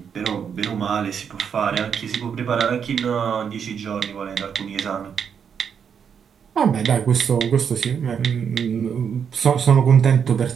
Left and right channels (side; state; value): left; quieter; 7.3 dB